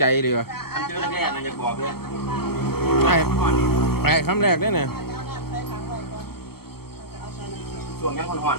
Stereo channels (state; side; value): late; right; 0.95 ms